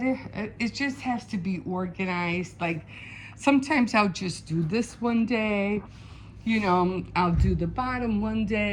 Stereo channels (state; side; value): identical; both; correlation 1.00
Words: It just has to be organized. Like, sometimes I'll just do this one day. You know, I'll do the bottom one